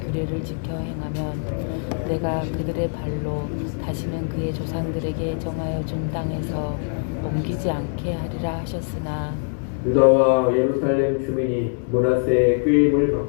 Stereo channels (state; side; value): silent; right; digital silence